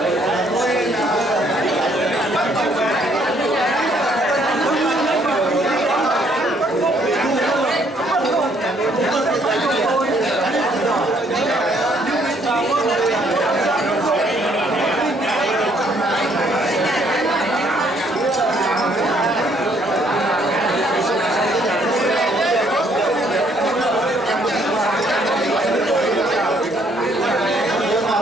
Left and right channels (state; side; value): normal; both; correlation 0.67